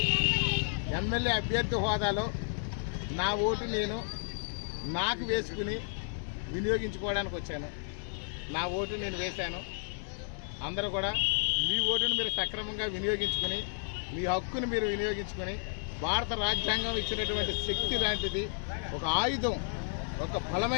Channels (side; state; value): right; silent; digital silence